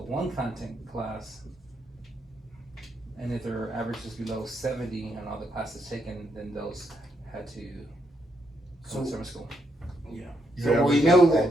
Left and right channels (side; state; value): both; normal; correlation 0.78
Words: 1 content class, and if their average is below 70 on all the classes taken, then those had to come to summer school. Yeah. You So we average know all